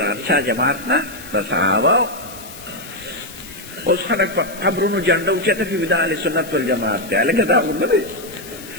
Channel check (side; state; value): left; noise; hiss, 16 dB below the sound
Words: ارشا جماعت نه د صحابو اوس خلک په قبرونو جنډه اوچته کوي د اهل سنت والجماعت دی هلکه دا خو نه دی